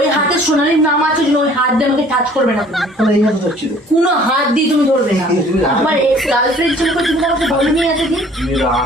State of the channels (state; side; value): normal; both; correlation 0.53